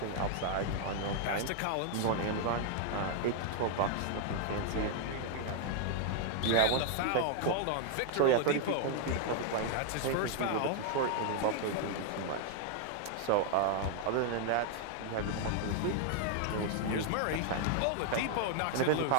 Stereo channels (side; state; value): both; different; correlation 0.00